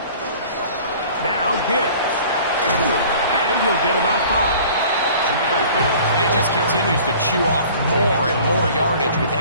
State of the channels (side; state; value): both; inverted; correlation -0.47